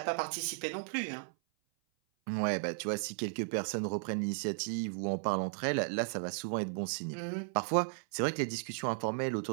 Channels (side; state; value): left; silent; 54 dB below the other